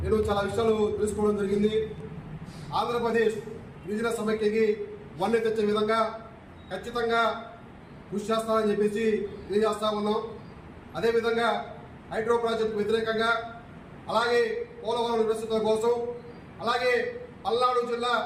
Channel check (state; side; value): identical; both; correlation 1.00